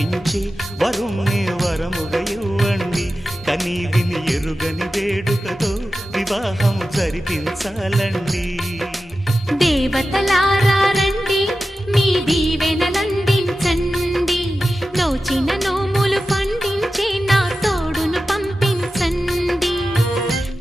వరుణ్ణి వరముగా ఇవ్వండి కనీ విని ఎరుగని వేడుకతో వివాహం జరిపించాలండి దేవతలారా రండి మీ దీవెనలందించండి నోచిన నోములు పండించే నా తోడును పంపించండి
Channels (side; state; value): both; normal; correlation 0.93